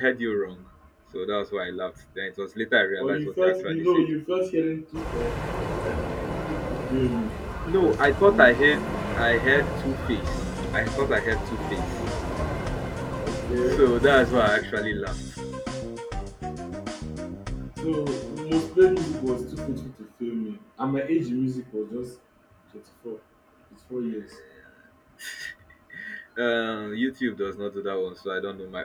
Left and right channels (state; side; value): identical; both; correlation 1.00